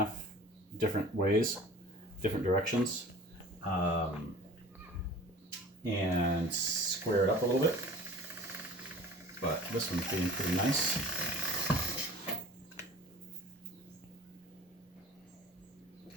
different ways, different directions, and square it up a little bit. But this one's being pretty nice.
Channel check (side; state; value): both; normal; correlation 0.42